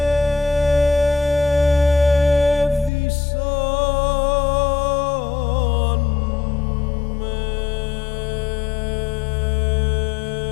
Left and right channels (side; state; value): right; drops out; at 2.9 s